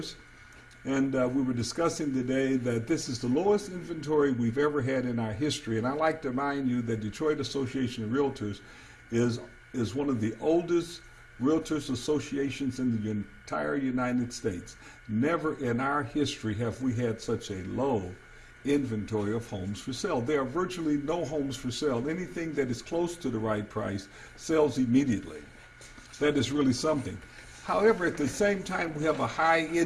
and we were discussing today that this is the lowest inventory we've ever had in our history. And I'd like to remind you that Detroit Association of Realtors is one of the oldest Realtors associations in the entire United States. Never in our history have we had such a low inventory of homes for sale. There are virtually no homes for sale. Anything that is close to the right price sells immediately. That is really something. However, at the same time, we have a high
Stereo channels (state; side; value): identical; both; correlation 1.00